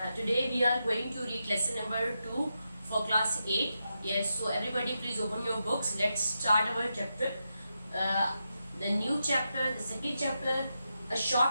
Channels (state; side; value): inverted; both; correlation -0.86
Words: Today we are going to read lesson number 2 for class 8. Yes, so everybody please open your books. Let's start our chapter. The new chapter, the second chapter, A